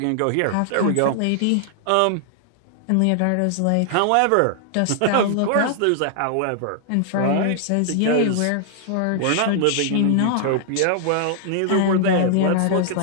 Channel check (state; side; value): different; both; correlation -0.01